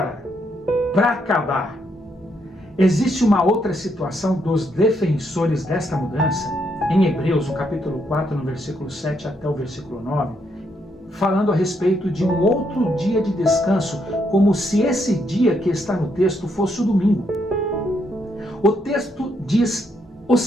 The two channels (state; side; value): normal; both; correlation 0.76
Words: para acabar, existe uma outra situação dos defensores desta mudança, em Hebreus, no capítulo 4, no versículo 7 até o versículo 9, falando a respeito de um outro dia de descanso, como se esse dia que está no texto fosse o domingo. O texto diz o